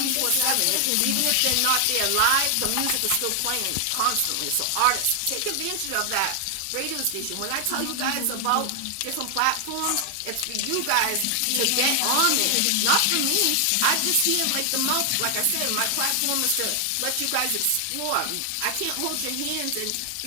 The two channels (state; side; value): different; both; correlation 0.00